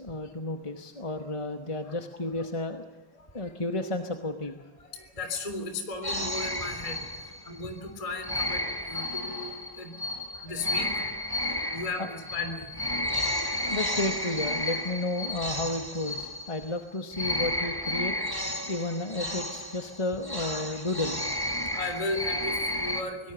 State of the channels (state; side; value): late; right; 1.1 ms